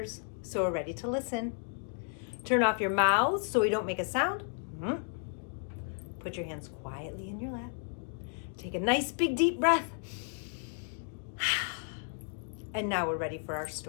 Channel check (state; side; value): silent; right; 56 dB below the other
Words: so we're ready to listen. Turn off your mouths so we don't make a sound. Put your hands quietly in your lap. Take a nice big deep breath. And now we're ready for our